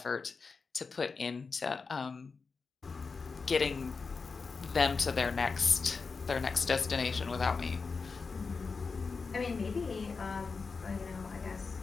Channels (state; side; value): quieter; right; 4.7 dB